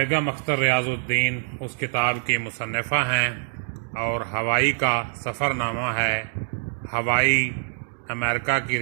اختر ریاض الدین اس کتاب کی مصنفہ ہیں، اور ہوائی کا سفر نامہ ہے۔ ہوائی امریکہ کی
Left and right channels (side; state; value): left; silent; digital silence